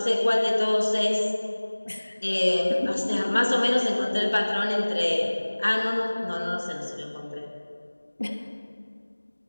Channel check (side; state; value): both; inverted; correlation -1.00